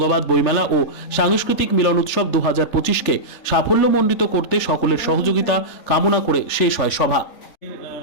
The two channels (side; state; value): right; late; 3.4 ms